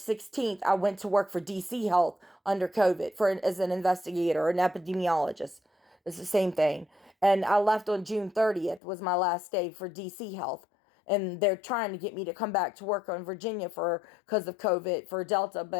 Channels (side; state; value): right; drops out; at 8.8 s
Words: I went to work for DC Health under COVID as an investigator, an epidemiologist. It's the same thing. And I left on June 30th was my last day for DC Health. And they're trying to get me to come back to work on Virginia because of COVID for Delta,